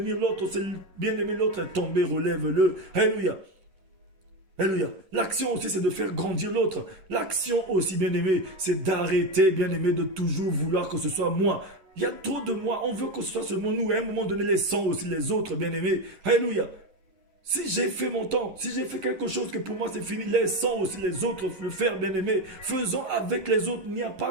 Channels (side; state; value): left; late; 10 ms